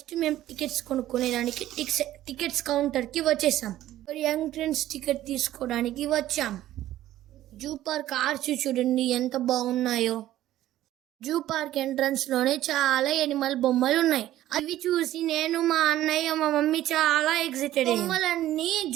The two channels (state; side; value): quieter; left; 13.8 dB